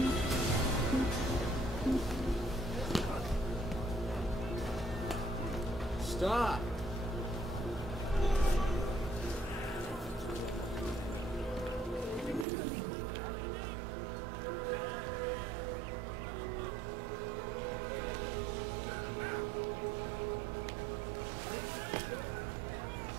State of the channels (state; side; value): drops out; left; at 12.5 s